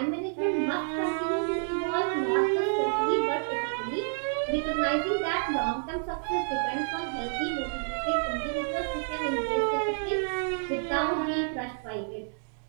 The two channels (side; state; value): left; silent; digital silence